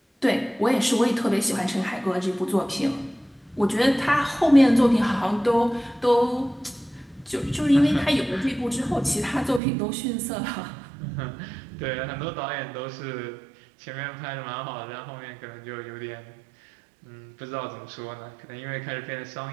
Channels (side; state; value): left; drops out; at 9.6 s